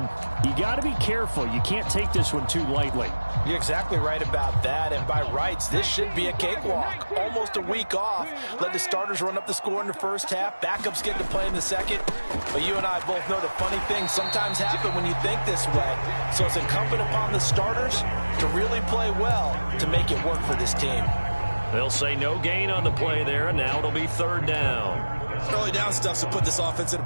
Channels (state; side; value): inverted; both; correlation -1.00